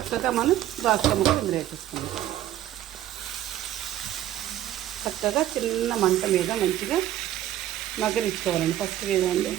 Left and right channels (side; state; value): left; quieter; 12.7 dB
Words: మనం దోసకాయ ముక్కలు ఇందులో వేసేసుకుందాం. చక్కగా చిన్న మంట మీద మంచిగా మగ్గనిచ్చుకోవాలండి. ఫస్ట్ వేదండి,